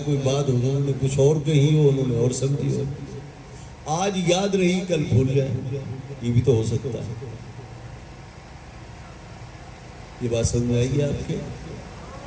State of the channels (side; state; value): both; identical; correlation 1.00